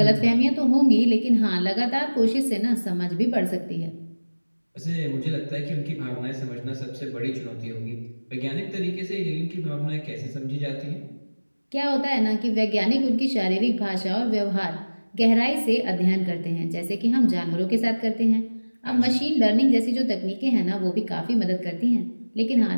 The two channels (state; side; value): inverted; both; correlation -1.00